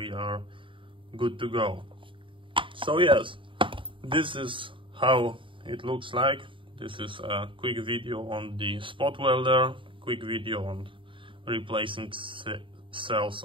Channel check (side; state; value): left; late; 0.25 ms